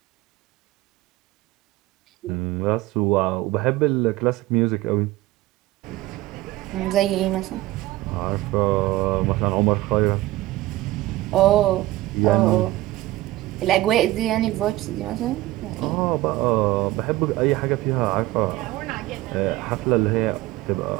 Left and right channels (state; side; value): quieter; left; 17.5 dB